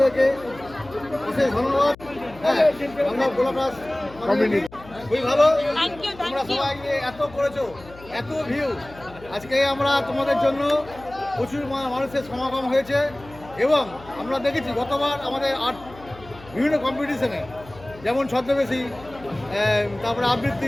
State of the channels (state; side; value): noise; left; hum, 20 dB below the sound